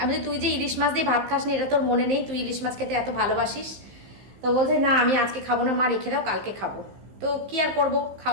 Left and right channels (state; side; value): late; left; 15 ms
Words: আমি তুই যে ইলিশ মাছ দিয়ে ভাত খাস নি, এটা তোর মনে নেই? তুই ইলিশ মাছ খেতে এত ভালোবাসিস। তো বলছে না আমি আজকে খাবো না মা, রেখে দাও, কালকে খাবো। তো কি আর করবো,